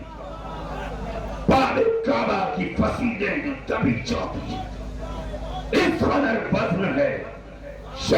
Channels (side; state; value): both; identical; correlation 1.00